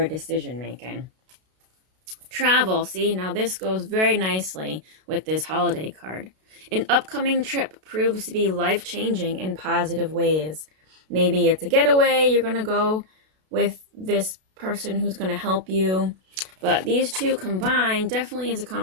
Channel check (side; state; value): left; late; 32 ms